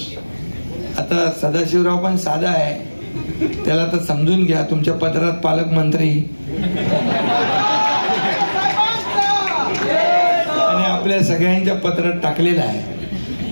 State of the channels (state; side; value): inverted; both; correlation -1.00